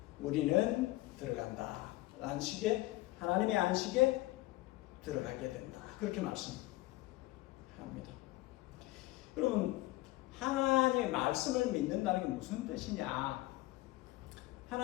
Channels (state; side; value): quieter; right; 18.8 dB